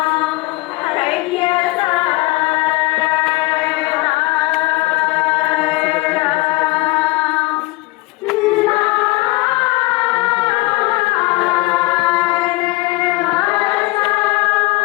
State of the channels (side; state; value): right; quieter; 21.4 dB